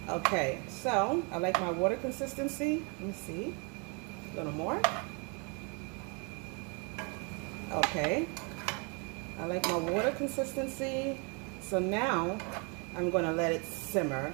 Okay, so I like my water consistency. Let me see. A little more. Okay. I like my water consistency. So now I'm going to let it simmer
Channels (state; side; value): quieter; left; 33.9 dB